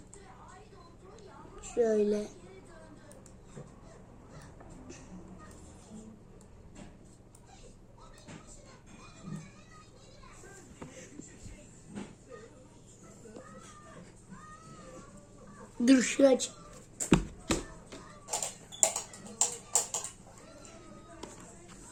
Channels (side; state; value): both; identical; correlation 1.00